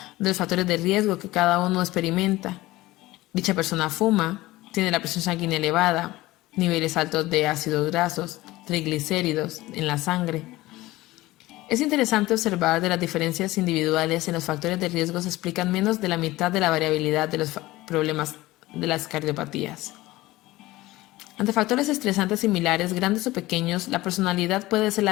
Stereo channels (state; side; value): quieter; right; 18.4 dB